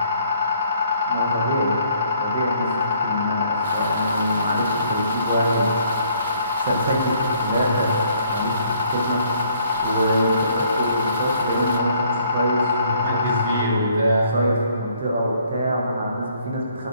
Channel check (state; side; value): inverted; both; correlation -0.63